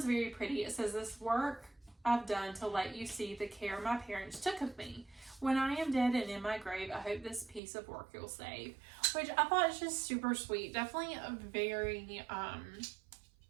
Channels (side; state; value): left; drops out; at 7.6 s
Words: very pretty. It says, this work I've done to let you see the care my parents took of me. When I am dead and in my grave, I hope this piece of work you'll save. Which I thought is just super sweet. Definitely a very